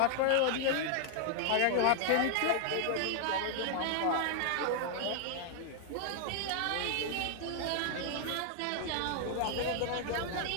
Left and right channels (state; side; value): different; both; correlation 0.00